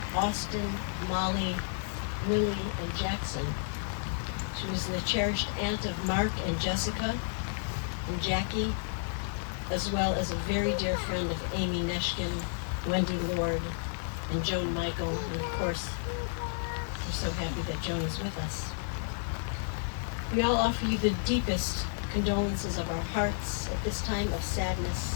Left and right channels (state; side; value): silent; right; digital silence